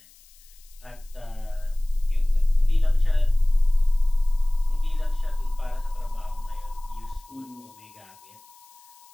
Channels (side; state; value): left; noise; hiss, 27 dB below the sound